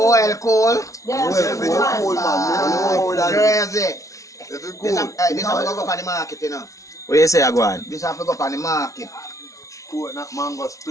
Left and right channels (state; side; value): late; right; 0.16 ms